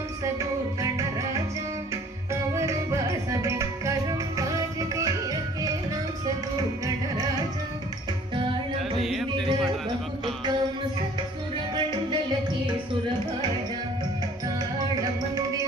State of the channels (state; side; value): normal; both; correlation 0.53